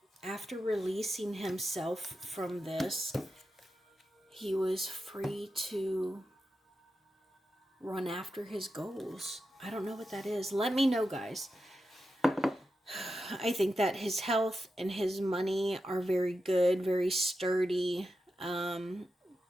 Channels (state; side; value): normal; both; correlation 0.89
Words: releasing himself from this, he was free to run after his goals. I don't know what that is. Let me know, guys. I think that his health and his money are very good, very sturdy. I